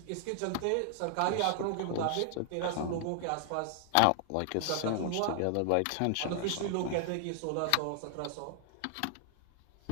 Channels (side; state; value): both; different; correlation 0.00